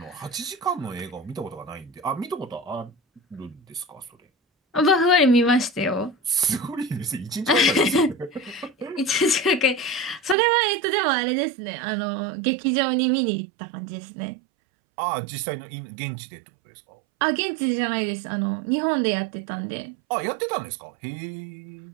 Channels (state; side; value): drops out; left; at 10.4 s